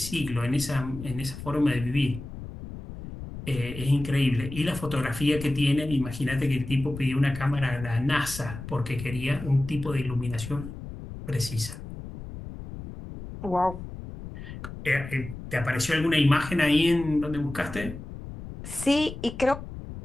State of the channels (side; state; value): left; noise; rumble, 11 dB below the sound